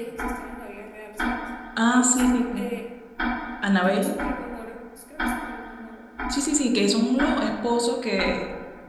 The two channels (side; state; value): both; identical; correlation 1.00